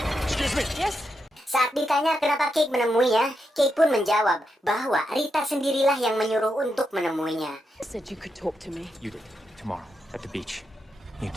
Excuse me. Yes? Saat ditanya kenapa Cake menemuinya, Cake pun menjawab bahwa Rita sendirilah yang menyuruh untuk menemuinya. Said you could talk to me. You did. Tomorrow, at the beach. You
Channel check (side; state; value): both; normal; correlation 0.84